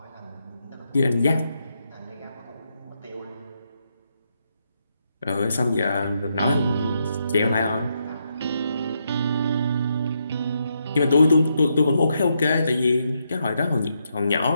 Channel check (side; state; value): both; inverted; correlation -0.80